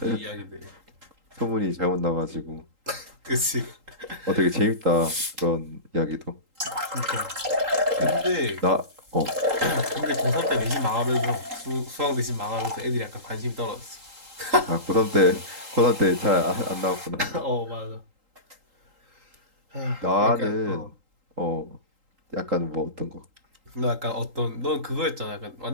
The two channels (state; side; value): late; left; 3.8 ms